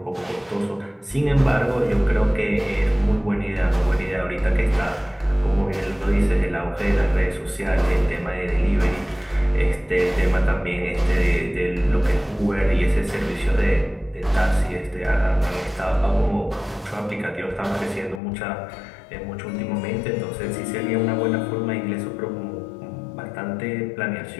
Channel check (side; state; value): right; drops out; at 18.2 s